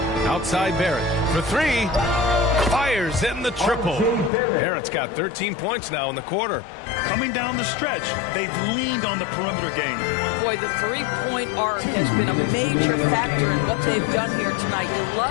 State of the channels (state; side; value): drops out; right; at 4.3 s